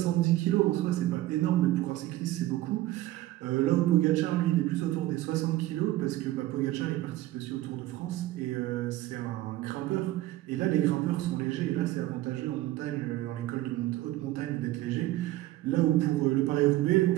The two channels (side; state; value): left; quieter; 16.0 dB